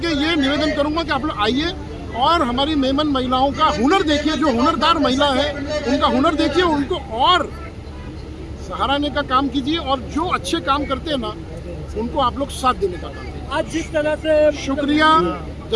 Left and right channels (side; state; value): both; identical; correlation 1.00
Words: ये निवेदन करूँगा कि आप लोग आइए और हमारी मेमन महिलाओं का हुनर देखिए। जो हुनरदार महिला है उनका हुनर देखिए, उनको और सहाराने का काम कीजिए, और जो अच्छे काम करते हैं ना उनको आप लोग साथ देने का काम कीजिए। आज जिस तरह से शुक्रिया,